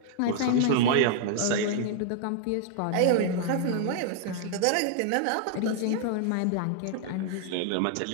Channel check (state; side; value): different; both; correlation 0.00